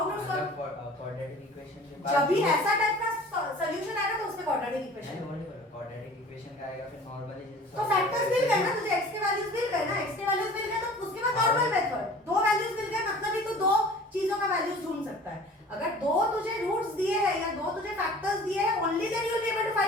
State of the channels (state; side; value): normal; both; correlation 0.45